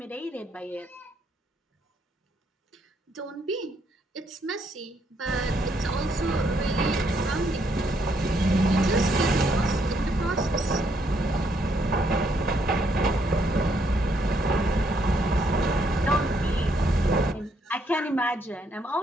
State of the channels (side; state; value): both; normal; correlation 0.73